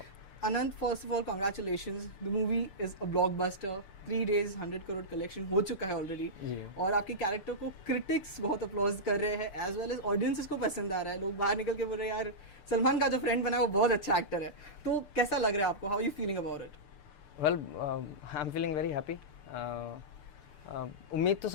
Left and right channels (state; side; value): late; right; 6.8 ms